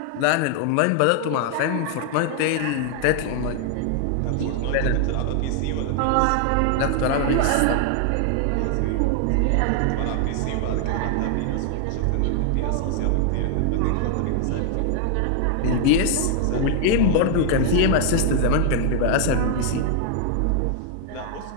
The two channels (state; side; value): different; both; correlation 0.00